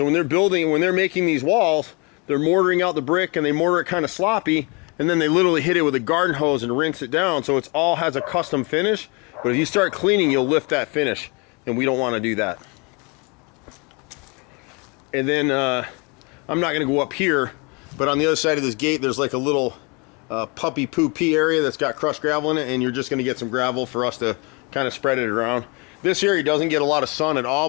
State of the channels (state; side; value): quieter; right; 30.7 dB